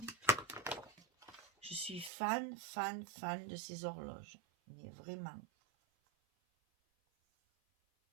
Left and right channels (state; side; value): drops out; left; at 2.1 s